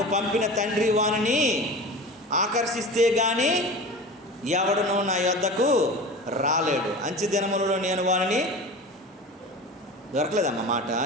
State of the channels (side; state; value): both; normal; correlation 0.34